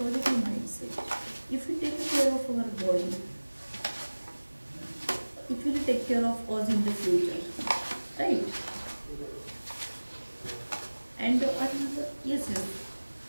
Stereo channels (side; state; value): both; inverted; correlation -1.00